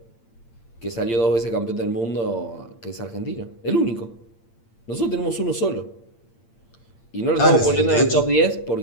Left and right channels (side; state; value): right; late; 8.8 ms